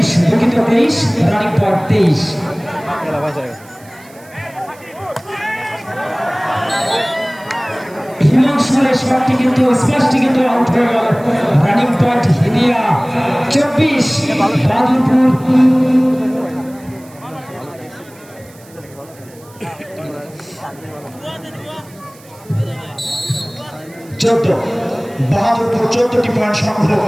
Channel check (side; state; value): right; noise; hiss, 25 dB below the sound